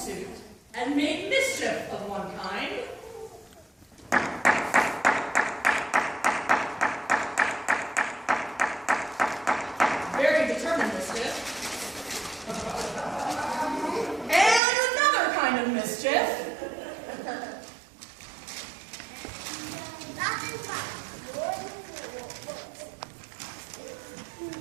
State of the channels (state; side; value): drops out; left; at 14.6 s